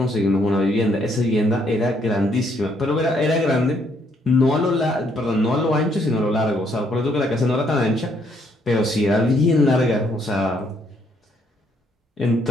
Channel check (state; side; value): normal; both; correlation 0.70